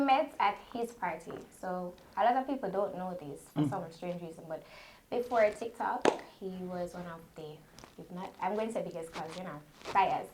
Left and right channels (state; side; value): identical; both; correlation 1.00